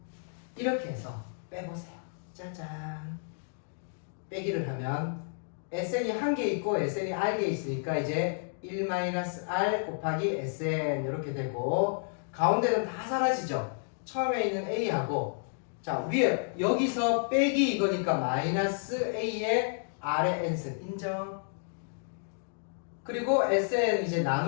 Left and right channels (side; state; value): right; silent; digital silence